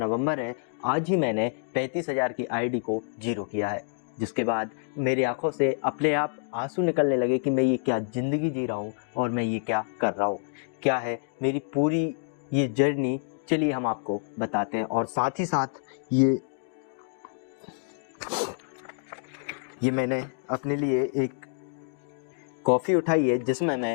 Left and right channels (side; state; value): right; silent; digital silence